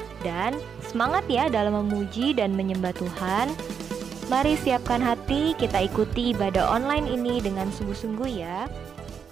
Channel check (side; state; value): left; quieter; 7.0 dB